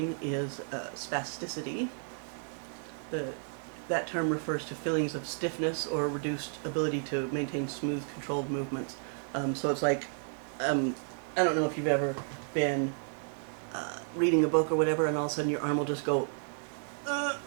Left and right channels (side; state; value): left; silent; 56 dB below the other